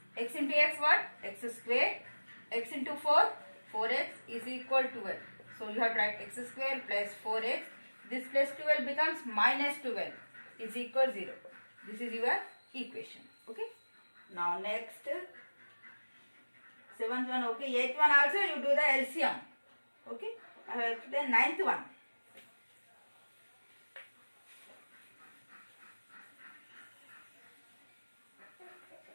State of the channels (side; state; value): both; inverted; correlation -1.00